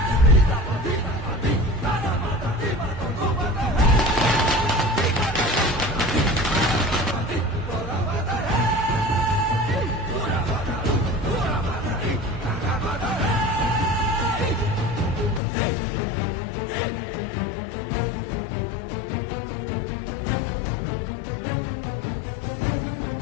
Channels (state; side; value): drops out; right; at 15.4 s